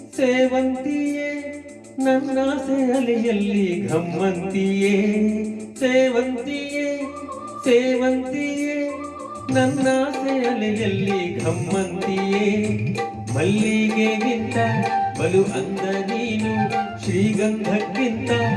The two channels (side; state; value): both; identical; correlation 1.00